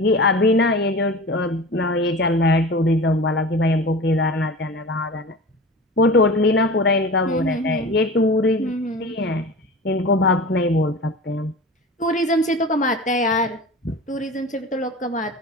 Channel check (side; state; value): both; normal; correlation 0.35